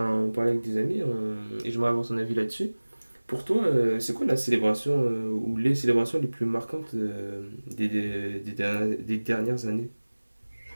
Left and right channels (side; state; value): both; inverted; correlation -1.00